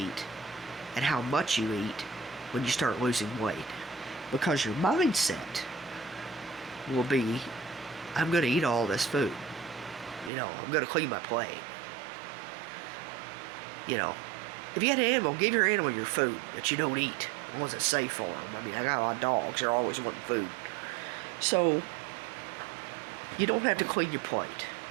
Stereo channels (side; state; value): left; drops out; at 10.3 s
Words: and how much you eat when you start losing weight. Because your mindset will be, I'm going to eat all this food. I'm going to clean my plate. If you had an animal, give your animal your food that you don't eat. The ones that's safe for them. I mean, I got a lot of dogs. They're always wanting food. So, you don't have to clean your plate.